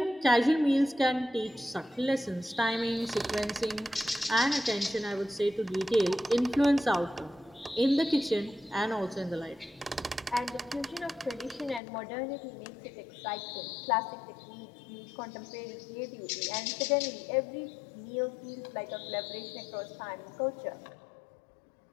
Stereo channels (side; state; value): right; drops out; at 11.8 s